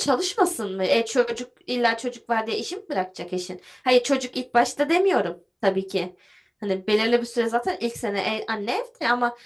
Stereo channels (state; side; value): identical; both; correlation 1.00